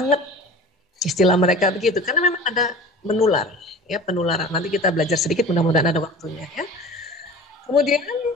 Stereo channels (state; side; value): normal; both; correlation 0.39